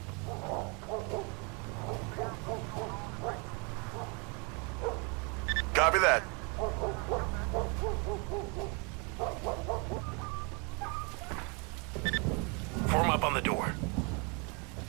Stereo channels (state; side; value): quieter; left; 32.9 dB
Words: Copy that. Form up on the door.